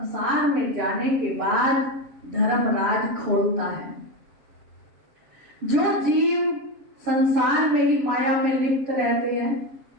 में जाने के बाद धर्मराज खोलता है। जो जीव संसार में ही माया में लिप्त रहते हैं,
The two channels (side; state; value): left; late; 7.1 ms